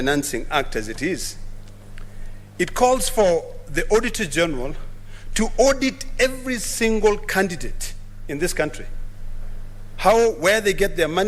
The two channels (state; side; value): identical; both; correlation 1.00